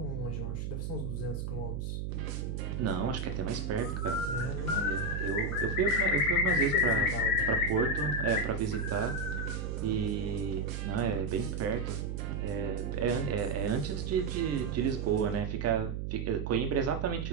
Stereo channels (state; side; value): noise; right; hum, 3 dB below the sound